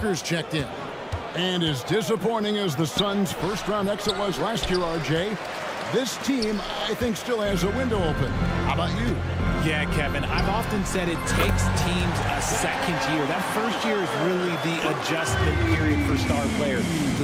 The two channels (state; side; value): identical; both; correlation 1.00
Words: checked in. And as disappointing as the Suns' first-round exit was last year, RJ, this team, I think, still has a window open. How about you? Yeah, Kevin, I've often said it takes teams a second year. That first year is really the adjustment period for star players.